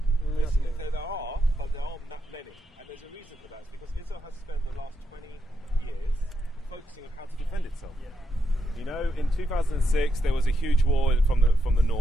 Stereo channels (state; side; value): normal; both; correlation 0.82